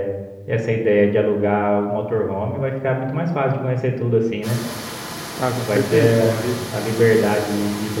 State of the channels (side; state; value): both; identical; correlation 1.00